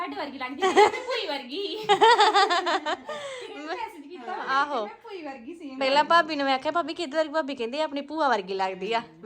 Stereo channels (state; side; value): identical; both; correlation 1.00